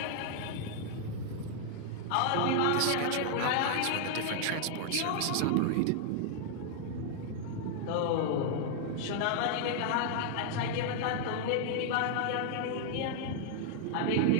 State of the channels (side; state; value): both; different; correlation 0.00